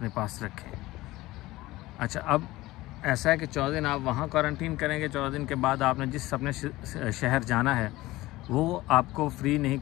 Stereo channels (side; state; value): right; quieter; 18.3 dB